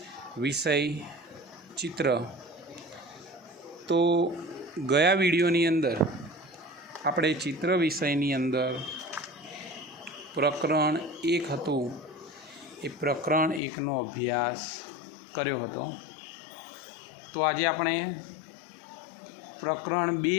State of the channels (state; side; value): drops out; right; at 13.6 s